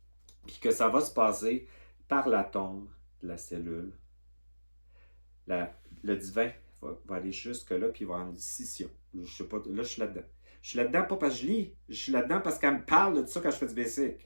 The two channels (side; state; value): both; inverted; correlation -1.00